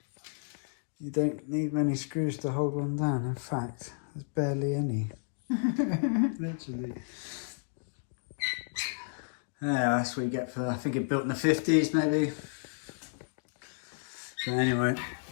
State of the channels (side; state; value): right; silent; digital silence